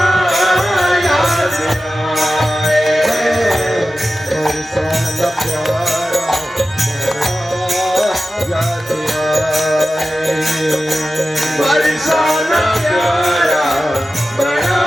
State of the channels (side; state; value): both; normal; correlation 0.94